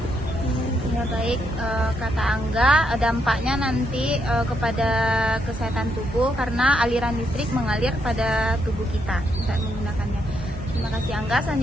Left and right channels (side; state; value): both; normal; correlation 0.77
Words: Ya, Ya baik, kata Angga, dampaknya nanti kepada kesehatan tubuh karena aliran listrik mengalir pada tubuh kita saat menggunakannya. Terima kasih Angga.